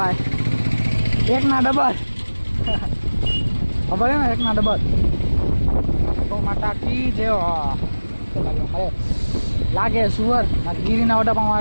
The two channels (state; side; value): inverted; both; correlation -1.00